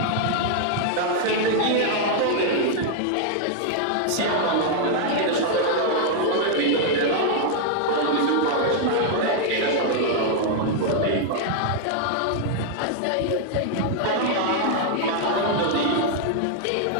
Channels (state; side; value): different; both; correlation 0.00